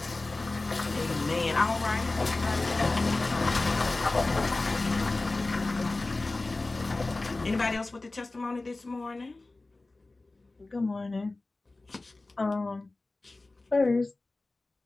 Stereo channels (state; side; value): quieter; right; 3.1 dB